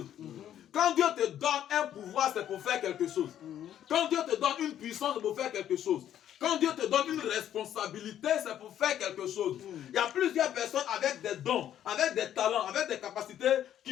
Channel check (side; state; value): right; quieter; 10.8 dB